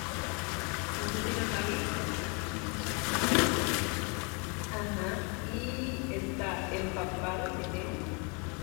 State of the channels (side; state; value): right; quieter; 33.9 dB